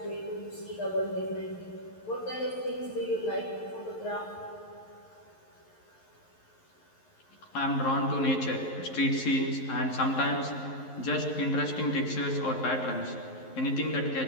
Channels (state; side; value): late; right; 11 ms